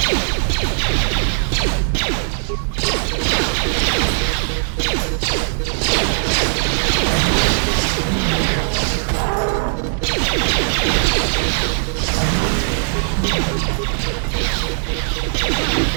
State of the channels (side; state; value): left; silent; digital silence